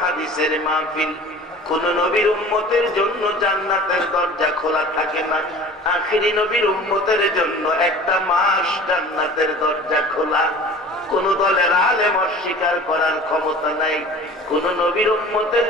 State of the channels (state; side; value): normal; both; correlation 0.42